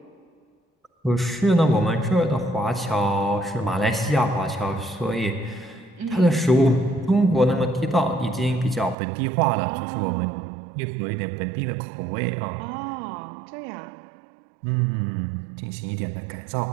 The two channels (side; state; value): left; drops out; at 9.0 s